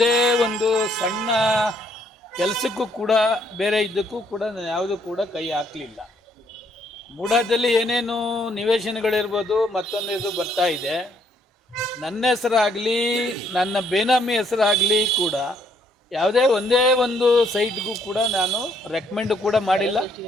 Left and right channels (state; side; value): normal; both; correlation 0.69